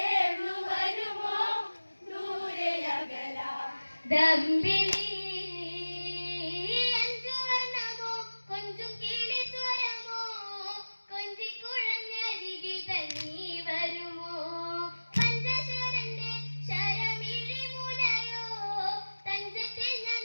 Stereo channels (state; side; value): inverted; both; correlation -1.00